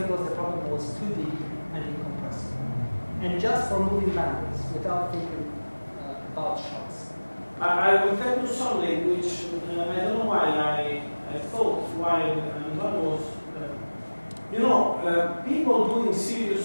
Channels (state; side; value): inverted; both; correlation -1.00